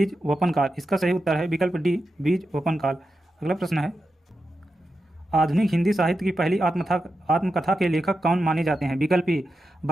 वपन काल। इसका सही उत्तर है विकल्प डी बीज वपन काल। अगला प्रश्न है आधुनिक हिंदी साहित्य की पहली आत्मकथा के लेखक कौन माने जाते हैं? विकल्प ए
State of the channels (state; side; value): normal; both; correlation 0.89